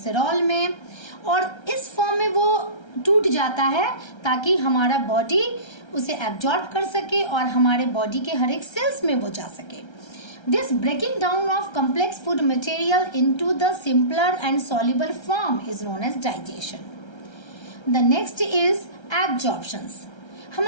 में, और इस फॉर्म में वो टूट जाता है ताकि हमारा बॉडी उसे एब्जॉर्ब कर सके और हमारे बॉडी के हर एक सेल्स में वो जा सके. This breaking down of complex food material into the simpler and soluble form is known as digestion. The next is absorptions.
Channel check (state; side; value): late; right; 1.3 ms